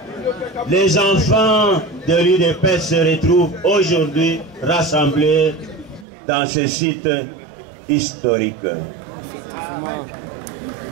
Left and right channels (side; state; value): left; drops out; at 6.1 s